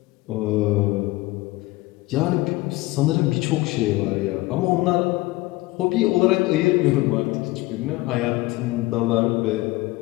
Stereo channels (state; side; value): quieter; right; 20.1 dB